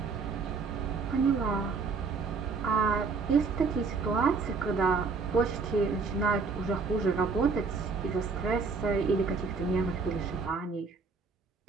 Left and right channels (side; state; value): left; quieter; 4.7 dB